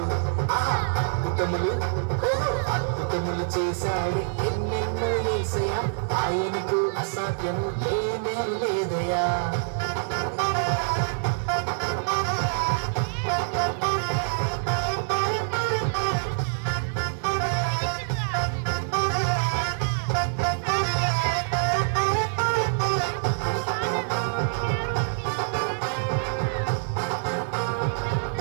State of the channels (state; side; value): silent; left; digital silence